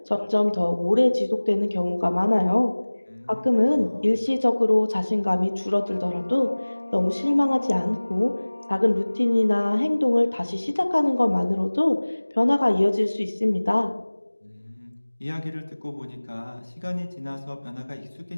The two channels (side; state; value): both; inverted; correlation -1.00